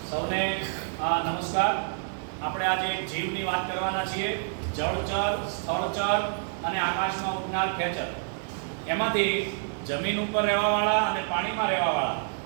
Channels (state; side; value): silent; left; digital silence